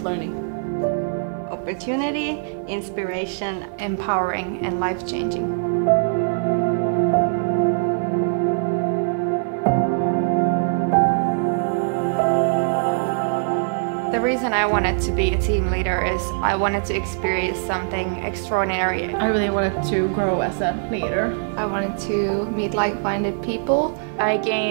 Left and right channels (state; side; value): silent; left; 55 dB below the other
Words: Opportunity, inspiration, empowering and life-changing. The reason I wanted to be a team leader is I wanted to experience something extraordinary. I really wanted to grow as a leader. I wanted to meet like-minded people. I